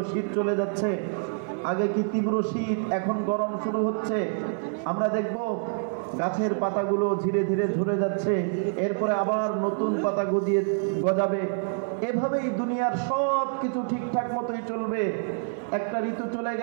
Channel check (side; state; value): left; silent; 60 dB below the other